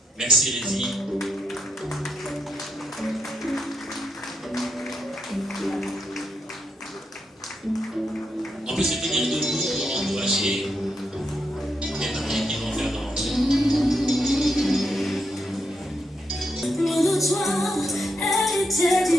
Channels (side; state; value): both; normal; correlation 0.81